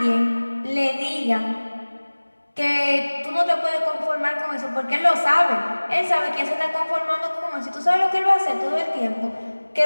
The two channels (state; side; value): inverted; both; correlation -1.00